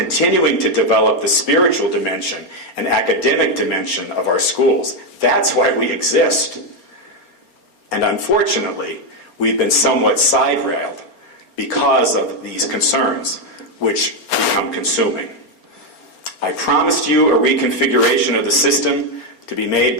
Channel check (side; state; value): right; late; 4.3 ms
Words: to develop the spiritual dimension and academic dimension of our schools. That's why we exist. And unfortunately, we've been somewhat side-railed because of these concerns, which become consuming. I promised you a reconfiguration of the system to be made